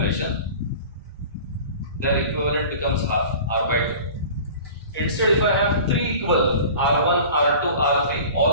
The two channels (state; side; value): inverted; both; correlation -0.41